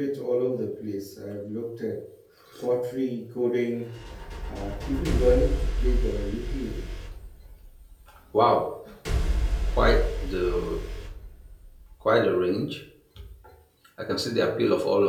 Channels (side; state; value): both; identical; correlation 1.00